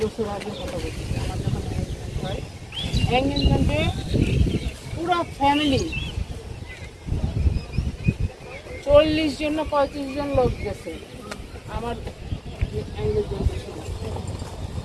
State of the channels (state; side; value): identical; both; correlation 1.00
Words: বছর আগে কথা বলছি, আমার যখন এঙ্গেজমেন্ট হয়, এঙ্গেজমেন্টে পুরো ফ্যামিলি 40 জন না 35 জন লোক গেছে আমার এঙ্গেজমেন্টের সময়।